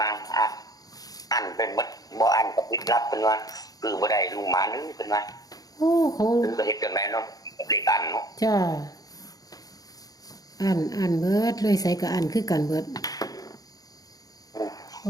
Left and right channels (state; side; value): late; right; 0.18 ms